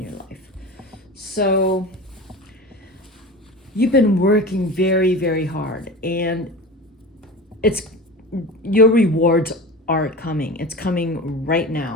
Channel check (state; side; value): normal; both; correlation 0.31